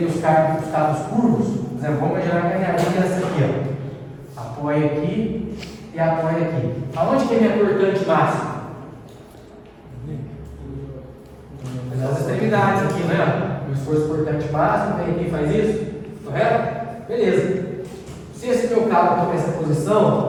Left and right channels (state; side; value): identical; both; correlation 1.00